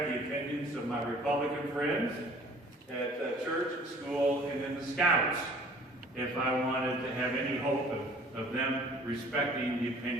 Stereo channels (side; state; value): both; normal; correlation 0.51